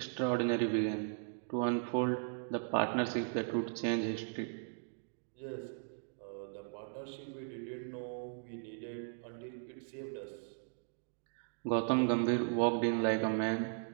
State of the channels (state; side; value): silent; left; digital silence